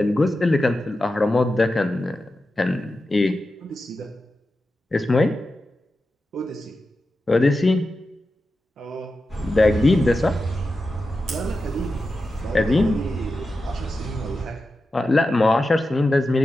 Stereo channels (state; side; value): normal; both; correlation 0.91